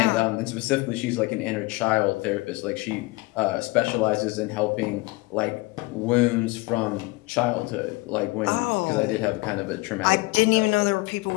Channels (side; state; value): right; quieter; 23.2 dB